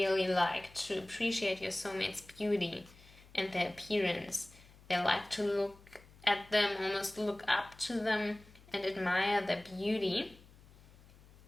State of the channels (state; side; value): noise; left; hum, 24 dB below the sound